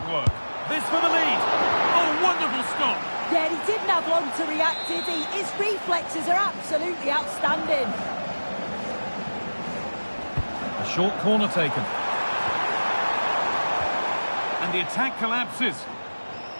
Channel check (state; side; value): inverted; both; correlation -1.00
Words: work. This for the lead. Oh, wonderful stop. Yeah, he didn't have long to react, did he? His reflexes are absolutely outstanding. A short corner taken. And the attack collapses.